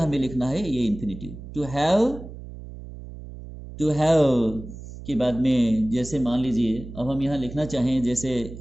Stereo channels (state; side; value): noise; right; hum, 13 dB below the sound